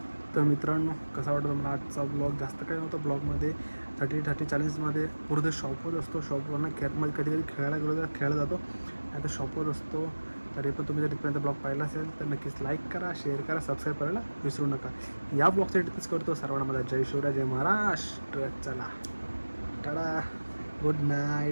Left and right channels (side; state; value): both; inverted; correlation -1.00